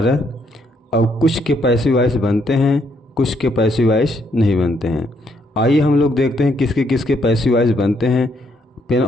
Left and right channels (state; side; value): normal; both; correlation 0.73